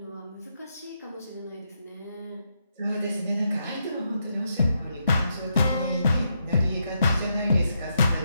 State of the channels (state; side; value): inverted; both; correlation -0.81